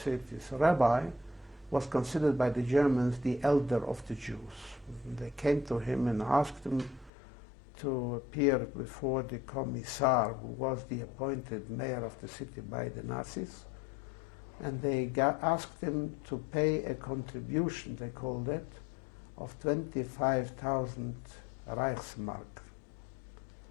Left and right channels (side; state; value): right; drops out; at 7.1 s